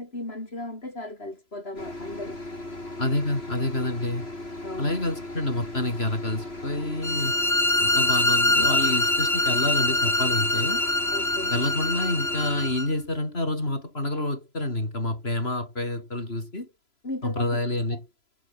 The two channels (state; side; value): late; right; 3.0 ms